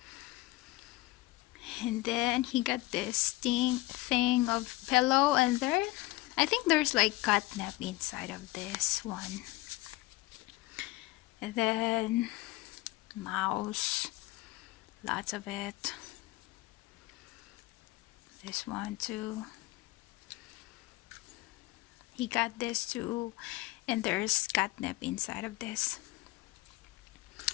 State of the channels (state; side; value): quieter; right; 19.9 dB